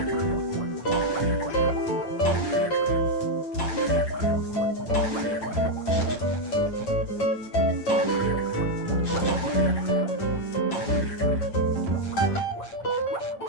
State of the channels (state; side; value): late; right; 8.7 ms